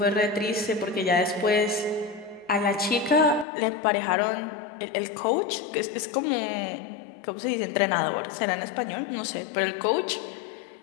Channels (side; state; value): right; drops out; at 3.5 s